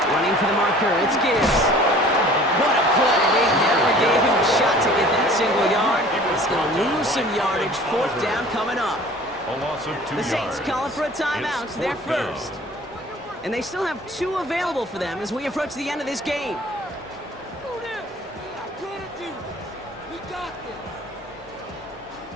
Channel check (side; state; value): both; normal; correlation 0.48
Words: Running for the marker, it's Gibbs. What a play. They never gave him a shot to get that single yard. He's going to lose some yardage. 4th down coming up. A loss of 2 The Saints yards. calling for a timeout. It's They're 4th down. first. And they still have 2 available for them as we approach the end of this game.